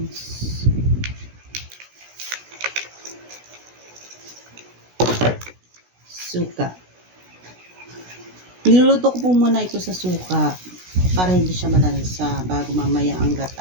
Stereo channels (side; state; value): left; late; 16 ms